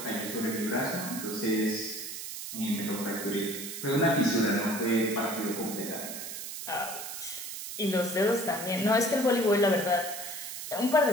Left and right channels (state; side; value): noise; right; hiss, 8 dB below the sound